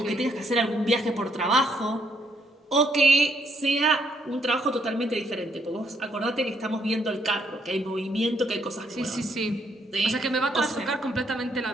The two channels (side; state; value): both; normal; correlation 0.72